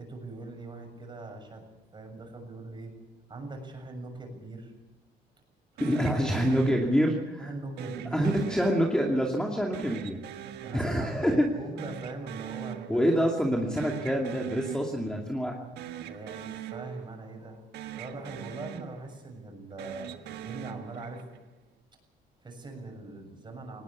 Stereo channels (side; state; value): both; normal; correlation 0.82